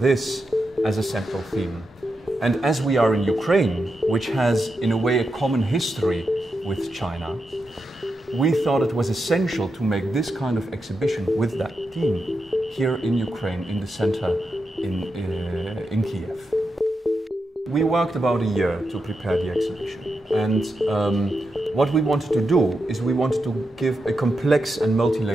as a central theme. And as we are in Ukraine, which has in a way a common history with China, we thought it was essential to make this kind of exhibition with that theme here in Ukraine, in the center in Kiev. We worked about a year to prepare the exhibition, and what we wanted to do is we wanted to give a complex and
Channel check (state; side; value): normal; both; correlation 0.87